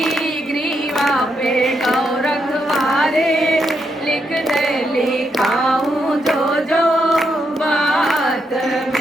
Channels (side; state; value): both; normal; correlation 0.80